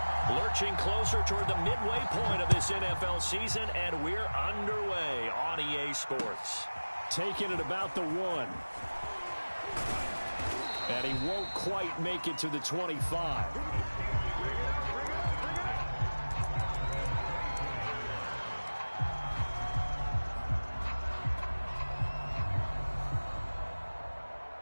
Lurching closer toward the midway point of this NFL season, and we're underway on EA Sports. Taking it about the 1. And he won't quite make it to the 25.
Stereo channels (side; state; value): both; inverted; correlation -1.00